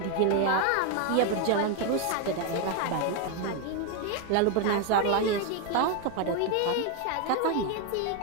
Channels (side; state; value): both; different; correlation 0.02